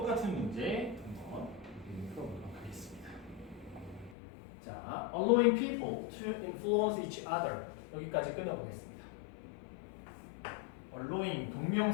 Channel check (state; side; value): drops out; right; at 4.2 s